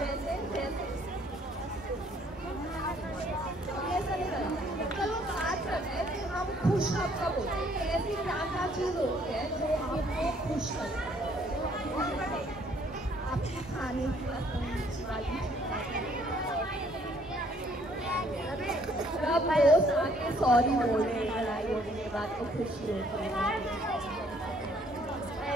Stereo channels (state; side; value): normal; both; correlation 0.63